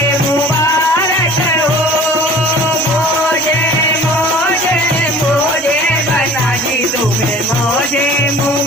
मुबारक हो। मौजे मौजे मौजे बना दी तुम्हें मौजे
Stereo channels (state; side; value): normal; both; correlation 0.45